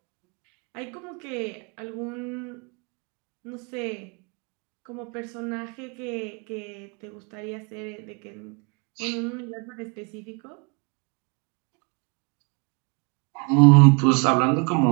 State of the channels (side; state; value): left; quieter; 32.5 dB